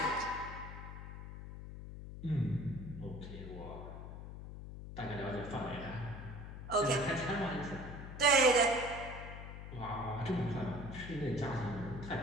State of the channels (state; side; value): noise; left; hum, 10 dB below the sound